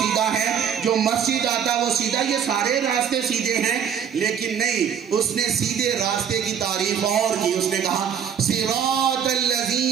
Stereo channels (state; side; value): quieter; left; 8.1 dB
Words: ہے، جو مسجد آتا وہ سیدھا، یہ سارے راستے سیدھے ہیں۔ لیکن نہیں، اس نے سیدھے راستے کی تعریف اور کی، اس نے کہا صراط